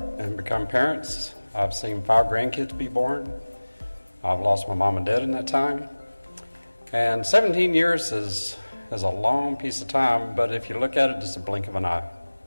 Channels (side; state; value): both; inverted; correlation -1.00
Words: and become parents. I've seen 5 grandkids be born. I've lost my mom and dad in that time. And 17 years is a long piece of time, but if you look at it, it's a blink of an eye.